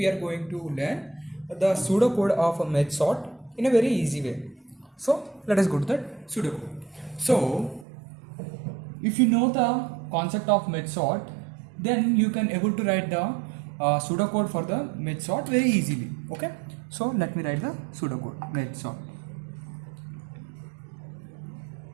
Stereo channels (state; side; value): drops out; left; at 7.9 s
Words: are going to learn the pseudocode of a merge sort in a very easy way. So let us go to the pseudocode. So if you know the concept of merge sort, then you can able to write the pseudocode for the merge sort very easily. Okay, so let me write the pseudocode merge sort.